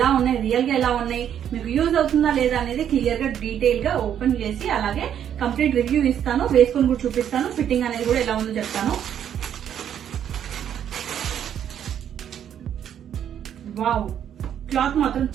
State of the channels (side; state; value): left; quieter; 9.5 dB